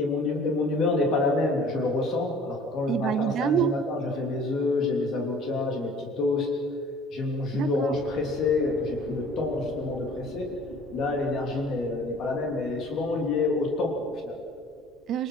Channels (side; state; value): both; normal; correlation 0.50